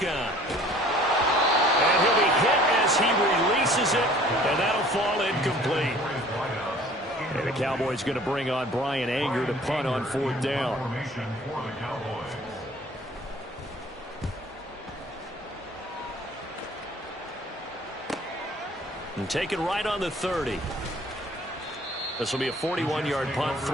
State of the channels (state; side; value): normal; both; correlation 0.51